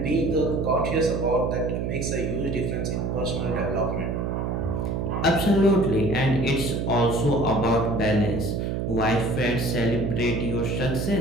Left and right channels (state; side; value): noise; right; hum, 1 dB below the sound